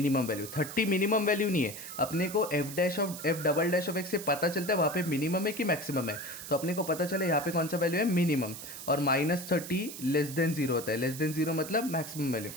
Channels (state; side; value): noise; right; hiss, 11 dB below the sound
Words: वैल्यू. 30 मिनिमम वैल्यू नहीं है, अपने को F double dash of x से पता चलता है वहाँ पे मिनिमम है कि मैक्सिमम है. तो अपने को पता चले यहाँ पे कौन सा वैल्यू है, मिनिमम. और माइनस 30 लेस देन जीरो होता है, लेस देन जीरो मतलब मैक्सिमम वैल्यू.